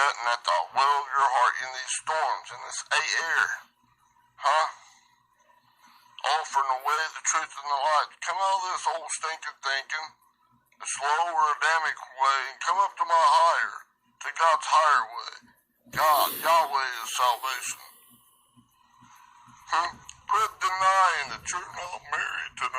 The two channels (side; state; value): both; identical; correlation 1.00